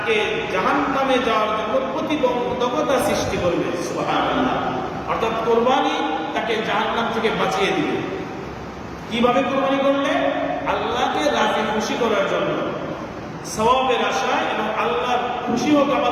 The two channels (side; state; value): both; identical; correlation 1.00